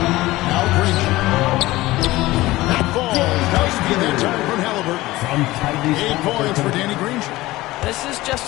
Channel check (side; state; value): right; quieter; 18.3 dB